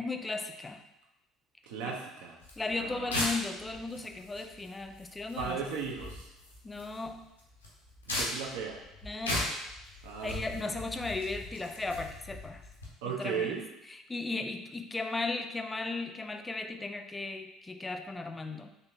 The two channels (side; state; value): both; normal; correlation 0.62